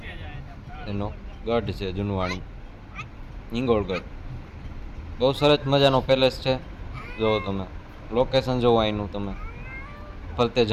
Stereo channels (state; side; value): identical; both; correlation 1.00